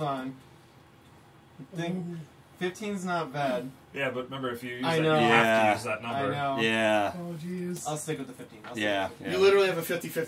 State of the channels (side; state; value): both; identical; correlation 1.00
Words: on. I think 15's not bad. Yeah, but remember, if you use I that, know. you have Yeah. to use that number. I know. Yeah. Oh, jeez. I'll stick with the 15. Yeah. You literally have a